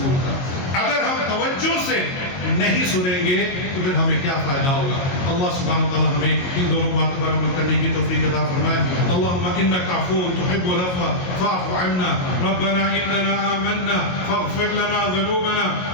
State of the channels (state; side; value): late; right; 22 ms